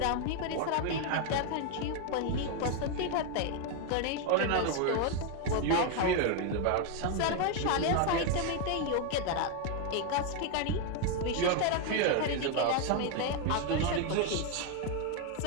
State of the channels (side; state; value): both; different; correlation 0.01